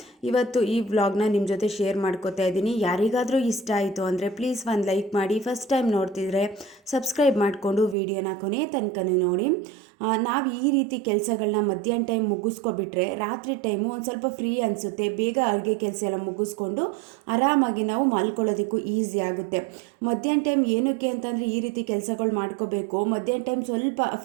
ಇವತ್ತು ಈ ವ್ಲಾಗ್ನ ನಿಮ್ಮ ಜೊತೆ ಶೇರ್ ಮಾಡ್ಕೋತಾ ಇದ್ದೀನಿ. ಯಾರಿಗಾದರೂ ಇಷ್ಟ ಆಯಿತು ಅಂದರೆ ಪ್ಲೀಸ್ ಒಂದು ಲೈಕ್ ಮಾಡಿ. ಫಸ್ಟ್ ಟೈಮ್ ನೋಡ್ತಿದ್ರೆ ಸಬ್ಸ್ಕ್ರೈಬ್ ಮಾಡಿಕೊಂಡು ವಿಡಿಯೋನ ಕೊನೆ ತನಕನೂ ನೋಡಿ. ನಾವು ಈ ರೀತಿ ಕೆಲಸಗಳನ್ನ ಮಧ್ಯಾಹ್ನ ಟೈಮ್ ಮುಗಿಸ್ಕೊಬಿಟ್ರೆ ರಾತ್ರಿ ಟೈಮು ಒಂದು ಸ್ವಲ್ಪ ಫ್ರೀ ಅನಿಸುತ್ತೆ. ಬೇಗ ಅಡುಗೆ ಕೆಲಸ ಎಲ್ಲ ಮುಗಿಸ್ಕೊಂಡು ಆರಾಮಾಗಿ ನಾವು ಮಲ್ಕೊಳ್ಳೋದಕ್ಕೂ ಈಸಿ ಆಗುತ್ತೆ. ಮಧ್ಯಾಹ್ನ ಟೈಮ್ ಏನಕ್ಕೆ ಅಂತಂದರೆ ಈ ರೀತಿ ಕೆಲಸಗಳು ಮಾಡ್ಕೋಬೇಕು. ಮಧ್ಯಾಹ್ನ ಟೈಮ್ ಸ್ವಲ್ಪ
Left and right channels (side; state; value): left; drops out; at 8.0 s